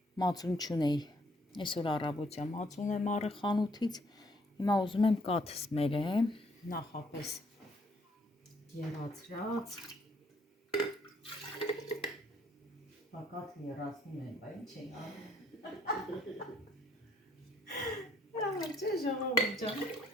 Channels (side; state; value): both; normal; correlation 0.66